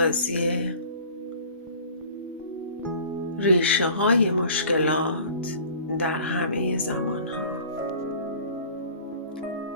ریشه های مشکلات در همه زمان ها.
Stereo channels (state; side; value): inverted; both; correlation -0.45